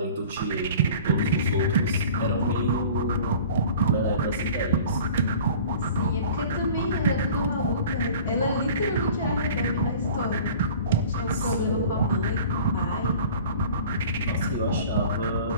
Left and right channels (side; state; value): both; inverted; correlation -0.44